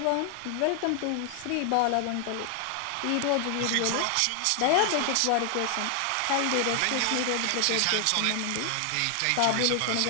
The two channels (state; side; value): different; both; correlation 0.00